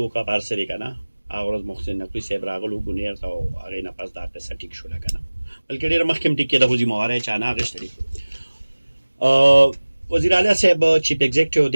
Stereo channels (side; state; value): both; inverted; correlation -1.00